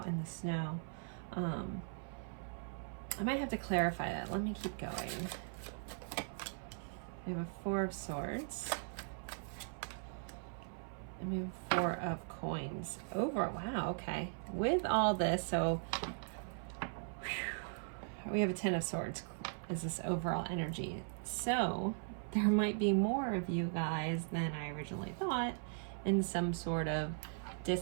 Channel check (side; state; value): left; silent; 52 dB below the other